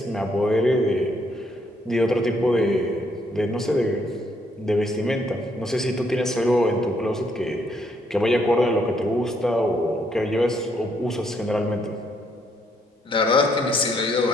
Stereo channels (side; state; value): both; normal; correlation 0.72